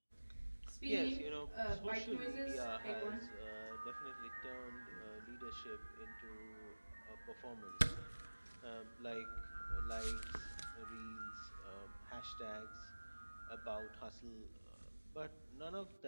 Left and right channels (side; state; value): both; inverted; correlation -1.00